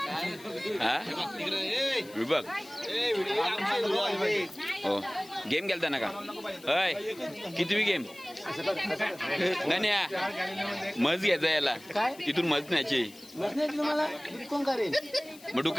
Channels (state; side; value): noise; left; hiss, 21 dB below the sound